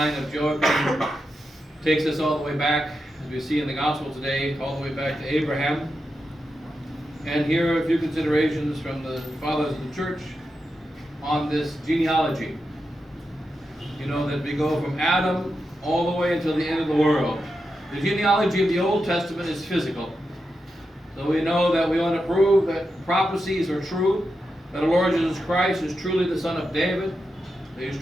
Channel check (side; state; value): both; normal; correlation 0.88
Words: of Joachim takes us all the way back, as we see in the Gospel today, all the way back to Abraham. And here are a few considerations from the fathers of the church on this genealogy. You know that we go from Adam all the way until the end of the world. The genealogy of the Old Testament is physical. So we know that we want to prove that prophecies are true, that our Lord Jesus Christ is truly the son of David, that he is